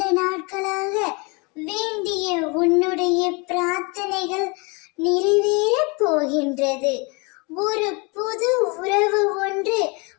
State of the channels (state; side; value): quieter; right; 29.8 dB